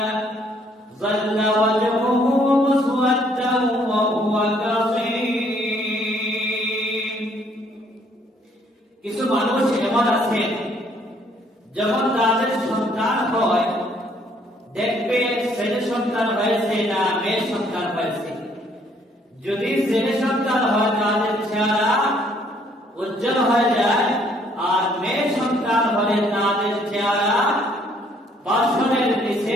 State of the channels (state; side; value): normal; both; correlation 0.64